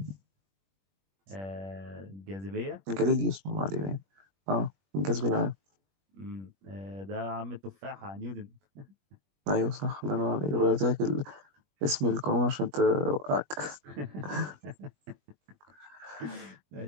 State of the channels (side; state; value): left; late; 21 ms